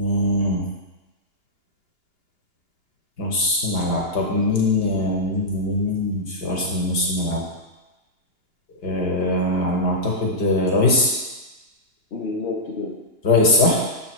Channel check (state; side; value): late; right; 2.9 ms